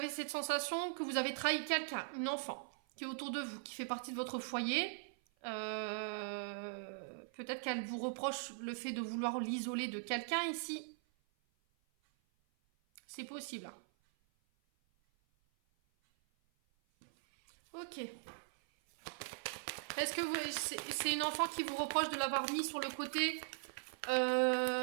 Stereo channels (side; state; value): left; silent; 51 dB below the other